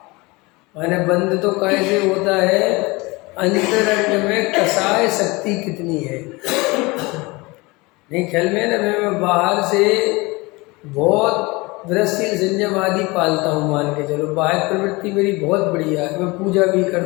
माने बंध तो कैसे होता है, अंतरंग में कसाय शक्ति कितनी है। नहीं ख्याल में है ना, मैं बाहर से बहुत वृषशील संयम आदि पालता हूँ, मान के चलो बाह्य प्रवृत्ति मेरी बहुत बढ़िया है, मैं पूजा भी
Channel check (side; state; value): right; quieter; 24.2 dB